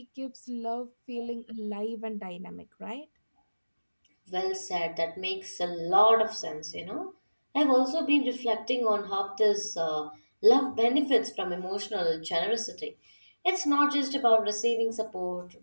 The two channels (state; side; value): inverted; both; correlation -1.00